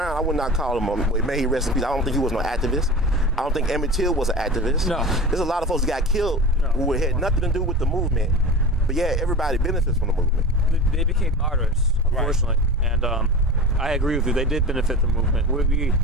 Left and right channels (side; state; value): both; normal; correlation 0.32